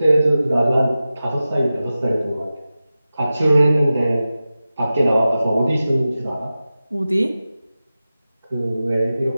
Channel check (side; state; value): both; inverted; correlation -0.94